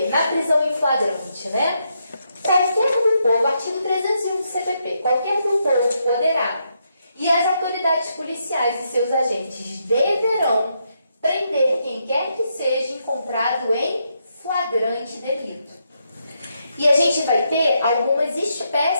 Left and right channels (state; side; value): inverted; both; correlation -0.80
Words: na prisão em flagrante, né? Qualquer do povo, artigo 301 do CPP, qualquer do povo poderá, e as autoridades policiais e seus agentes deverão prender quem quer que seja encontrado em flagrante delito. E a gente vai ter algumas